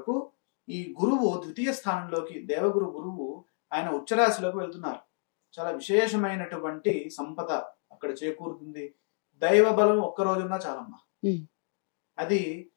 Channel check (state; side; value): silent; right; digital silence